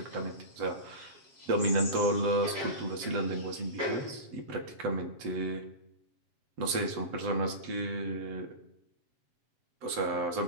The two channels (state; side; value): late; left; 7.9 ms